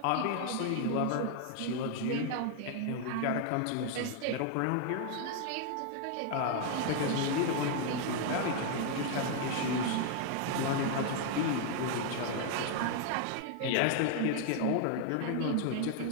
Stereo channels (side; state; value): both; different; correlation 0.00